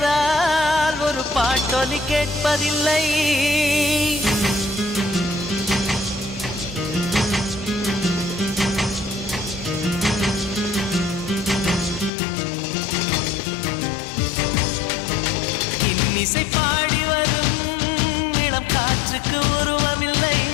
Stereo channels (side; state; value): right; drops out; at 12.1 s